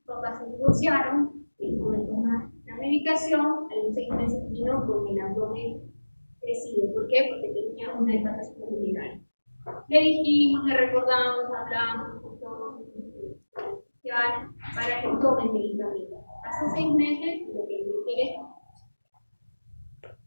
papás se divorciaron, dejó de tomar la medicación, a los 6 meses vino con el abdomen crecido. ¿Por qué? Porque tenía una hepatación vulnerable. Le dijimos, le recordamos, hablamos con todo para que tome el medicamento. Hace 6 meses, lo que me quiere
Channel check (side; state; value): both; inverted; correlation -1.00